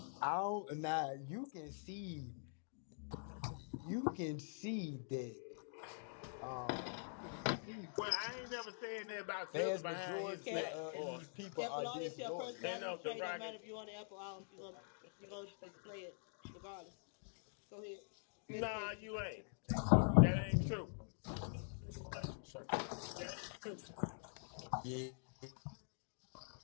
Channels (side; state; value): right; silent; digital silence